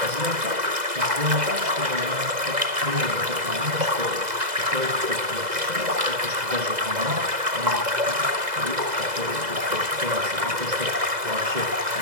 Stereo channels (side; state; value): left; late; 2.0 ms